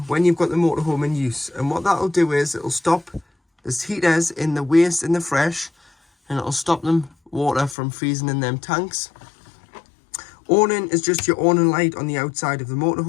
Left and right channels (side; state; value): right; drops out; at 7.8 s